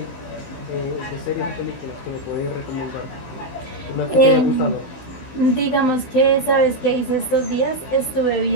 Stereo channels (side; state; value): right; late; 15 ms